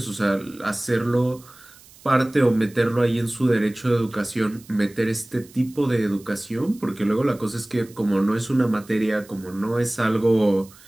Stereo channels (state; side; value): noise; right; hiss, 24 dB below the sound